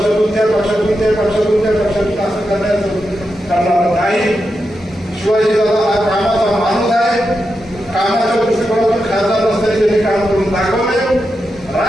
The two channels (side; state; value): both; normal; correlation 0.87